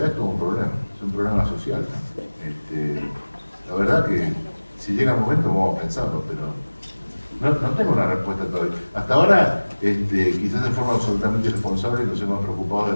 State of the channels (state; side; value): inverted; both; correlation -1.00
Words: es todo un problema, es un problema social, ¿no? La verdad que si llega el momento vamos a pensarlo, pero no tengo una respuesta todavía. Hasta ahora, quizás de forma absolutamente irresponsable, nos hemos preocupado